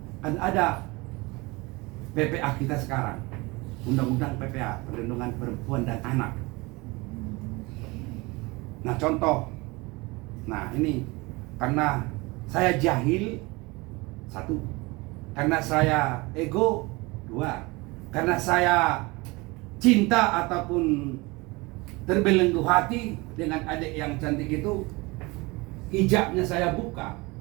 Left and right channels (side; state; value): left; quieter; 24.3 dB